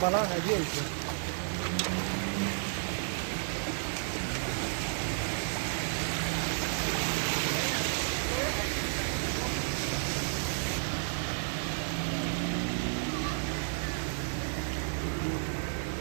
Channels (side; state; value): left; silent; digital silence